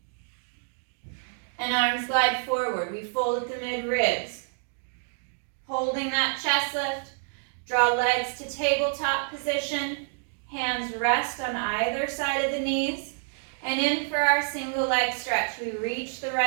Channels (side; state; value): left; silent; digital silence